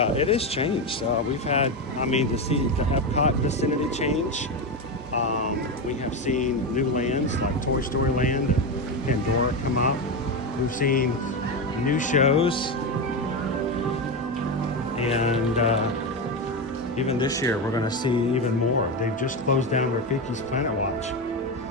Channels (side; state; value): both; normal; correlation 0.14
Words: it has changed. We've had, to see the Epcot vicinity change. We have seen new lands like Toy Story Land and Pandora come up. We've seen new shows, and even this year we're going to see even more. They've just closed down Rafiki's Planet Watch